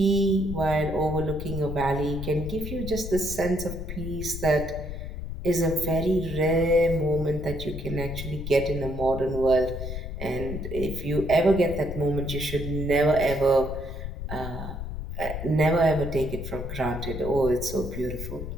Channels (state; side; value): noise; left; rumble, 7 dB below the sound